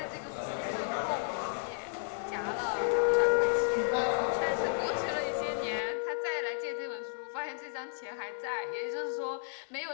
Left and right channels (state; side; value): silent; right; 56 dB below the other